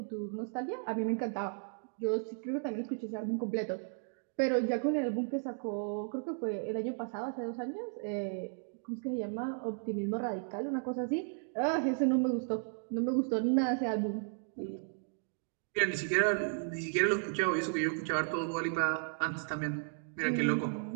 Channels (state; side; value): silent; left; digital silence